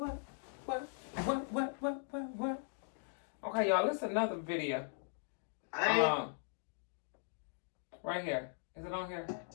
Okay, y'all, this is another video. Right here. Is it on here?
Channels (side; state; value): right; silent; digital silence